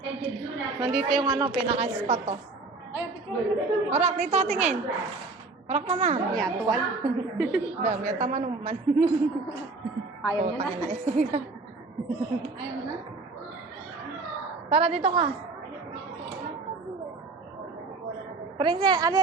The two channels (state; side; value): quieter; left; 3.7 dB